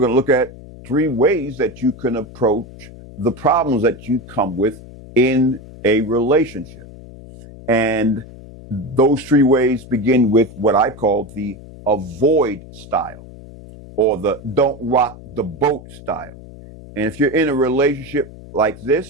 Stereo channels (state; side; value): noise; left; hum, 17 dB below the sound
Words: to look at 3 ways that you can approach the problems that you come with in a relationship. And those 3 ways begin with what I call the avoid style, or the don't rock the boat style. And if you're in a relationship like